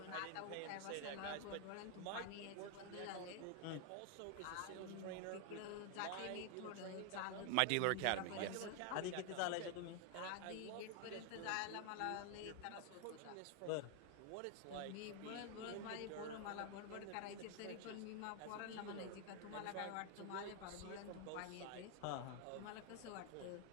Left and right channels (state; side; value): different; both; correlation 0.00